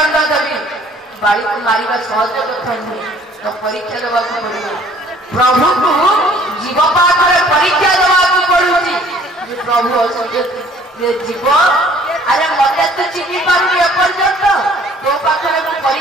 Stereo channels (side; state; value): both; normal; correlation 0.56